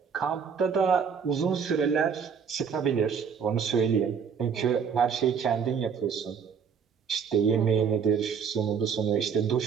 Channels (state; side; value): quieter; left; 6.7 dB